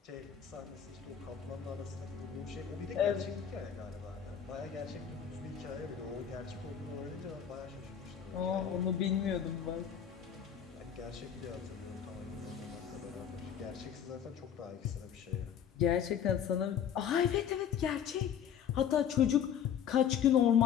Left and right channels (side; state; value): right; quieter; 8.5 dB